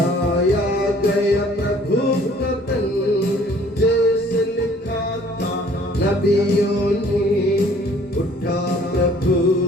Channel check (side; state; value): right; noise; rumble, 28 dB below the sound